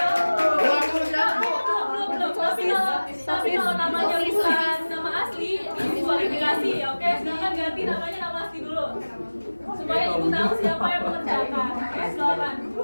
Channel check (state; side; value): inverted; both; correlation -1.00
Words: tapi kalau namanya bukan nama asli, diskualifikasi ya. Oke, silakan ganti namanya nama asli dulu. Supaya Ibu tahu siapa yang mengerjakan. Oke, silakan.